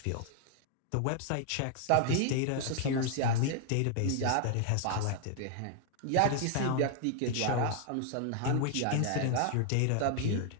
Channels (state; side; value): different; both; correlation 0.00